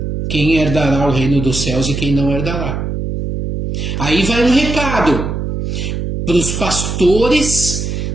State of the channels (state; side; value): noise; right; hum, 3 dB below the sound